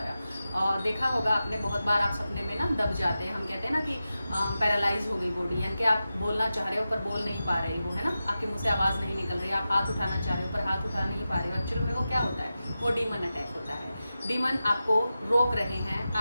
और देखा होगा आपने, बहुत बार आप सपने में ना दब जाते हैं। हम कहते हैं ना कि पैरालाइज हो गई बॉडी, यानी कि आप बोलना चाह रहे हो पर बोल नहीं पा रहे हो, है ना, आपके मुँह से आवाज़ नहीं निकल रही, आप हाथ उठाना चाह रहे हो पर हाथ उठा नहीं पा रहे हो। एक्चुअली में वो क्या होता है, वो डीमन अटैक होता है। डीमन आपको रोक रहे हैं,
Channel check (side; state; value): both; inverted; correlation -0.92